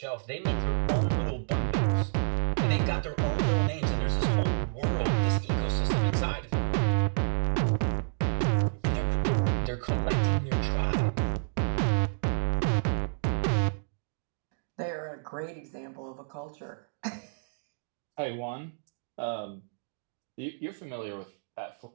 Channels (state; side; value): silent; left; digital silence